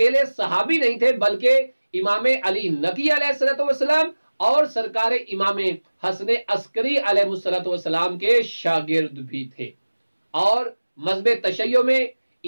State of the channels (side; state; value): both; inverted; correlation -1.00